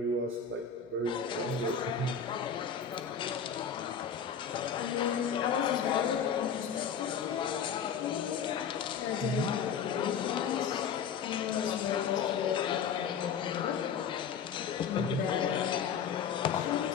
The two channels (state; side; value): quieter; right; 6.9 dB